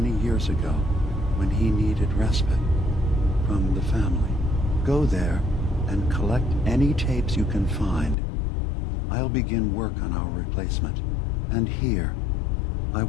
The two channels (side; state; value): right; drops out; at 8.2 s